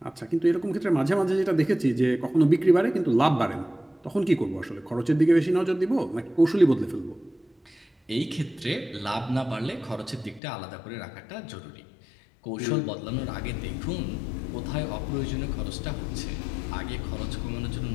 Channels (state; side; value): drops out; right; at 10.4 s